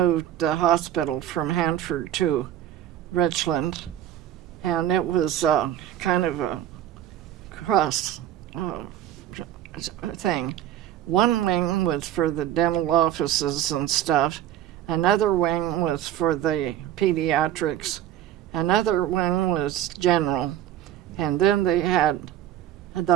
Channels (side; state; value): left; quieter; 11.9 dB